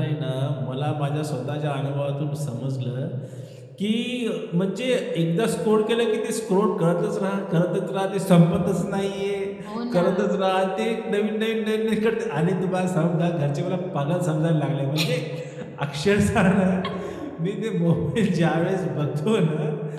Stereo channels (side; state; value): both; identical; correlation 1.00